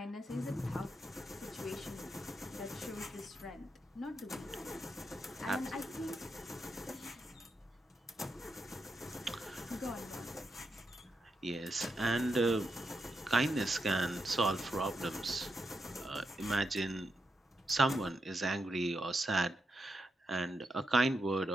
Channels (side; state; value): both; normal; correlation 0.84